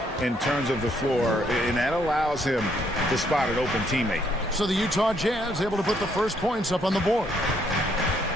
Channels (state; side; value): normal; both; correlation 0.71